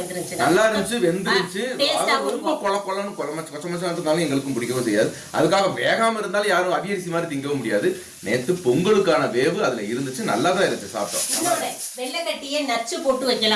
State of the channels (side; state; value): both; identical; correlation 1.00